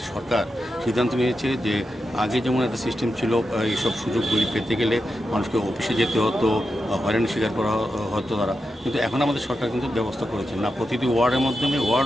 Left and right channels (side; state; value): both; normal; correlation 0.88